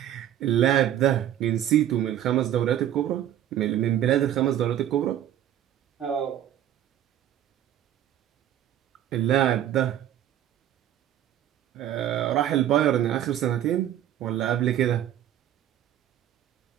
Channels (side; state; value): left; quieter; 11.5 dB